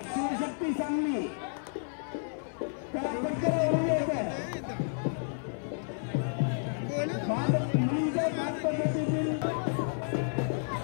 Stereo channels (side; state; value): right; silent; 57 dB below the other